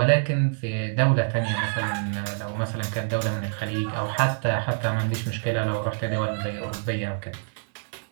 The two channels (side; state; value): left; silent; digital silence